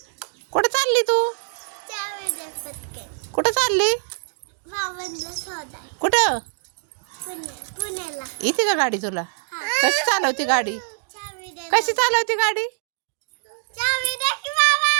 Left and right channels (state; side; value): silent; left; digital silence